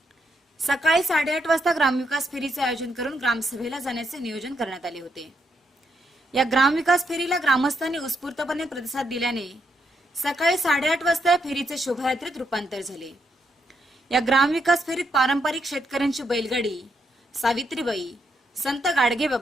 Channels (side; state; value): both; normal; correlation 0.78